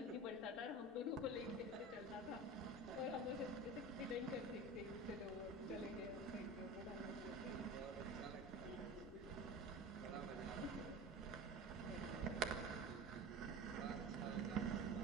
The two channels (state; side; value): normal; both; correlation 0.32